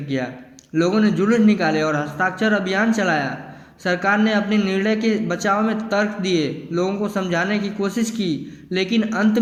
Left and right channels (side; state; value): both; identical; correlation 1.00